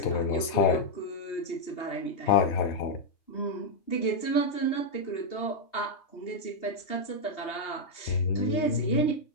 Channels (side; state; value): right; late; 2.8 ms